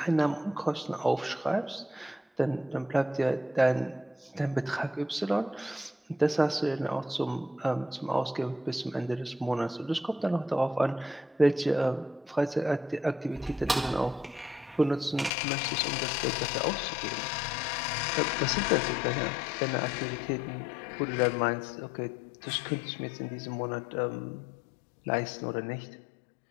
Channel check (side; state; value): right; drops out; at 15.3 s